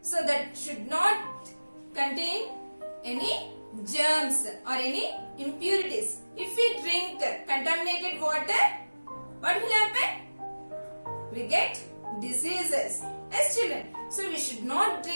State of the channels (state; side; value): inverted; both; correlation -1.00